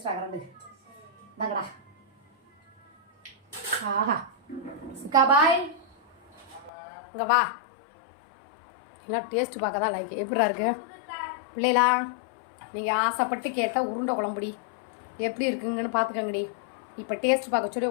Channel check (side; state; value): right; drops out; at 6.7 s